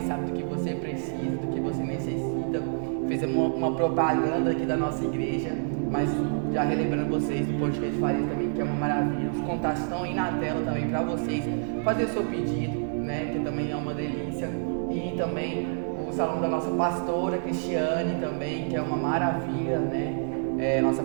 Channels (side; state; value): left; silent; digital silence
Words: sabe do que você precisa, do que você necessita. Fizemos uma propaganda aqui da nossa igreja, mas já relembrando vocês do podcast Farias também, que é uma maravilha. Os contatos estão aí na tela também para vocês fazer o seu pedido, né? Que também é uma delícia. E também o salão da nossa pastora Cristiane também, que é uma maravilha, né? Nossa